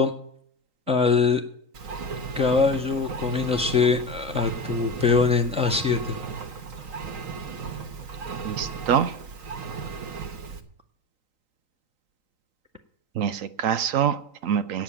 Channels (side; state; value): left; late; 3.9 ms